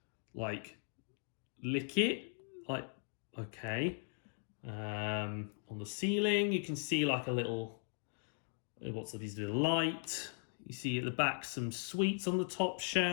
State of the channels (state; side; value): silent; right; 52 dB below the other